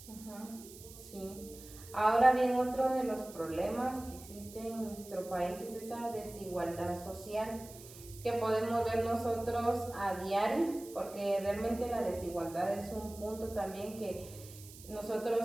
Sí. Ahora bien, otro de los problemas que existe en nuestro país es esa desigualdad social que podemos ver nosotros a diario, porque realmente la desigualdad es un punto también que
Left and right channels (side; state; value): right; noise; hiss, 17 dB below the sound